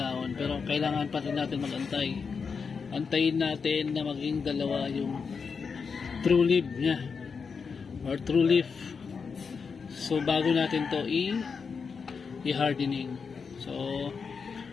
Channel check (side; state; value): right; quieter; 5.5 dB